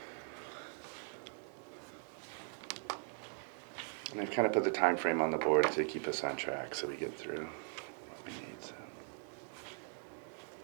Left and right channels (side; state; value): left; silent; 51 dB below the other